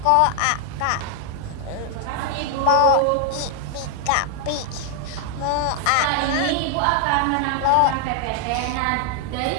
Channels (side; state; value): both; different; correlation 0.00